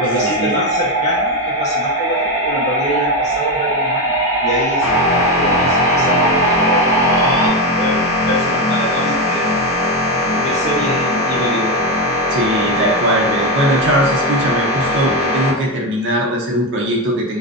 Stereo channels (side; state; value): both; normal; correlation 0.11